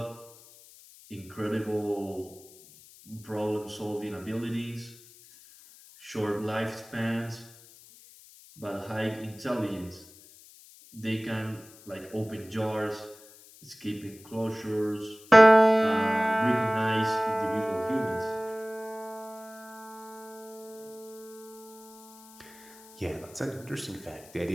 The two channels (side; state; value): left; noise; hiss, 22 dB below the sound